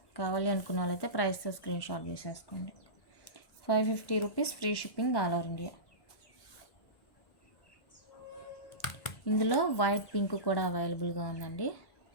కావాలి అనుకున్న వాళ్ళైతే ప్రైస్తో స్క్రీన్ షాట్ చేసేసుకోండి. 550 rupees, free shipping all over India. ఇందులో వైట్ పింక్ కూడా అవైలబుల్గా ఉందండి.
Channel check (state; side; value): late; right; 1.1 ms